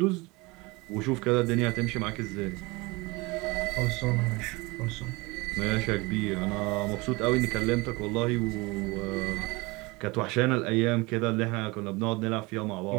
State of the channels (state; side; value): quieter; left; 24.4 dB